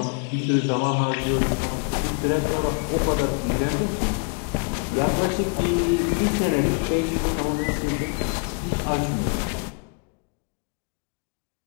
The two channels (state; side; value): quieter; right; 36.1 dB